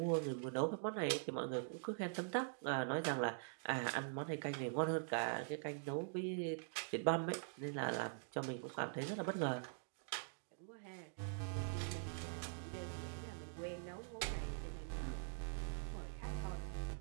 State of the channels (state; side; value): silent; left; digital silence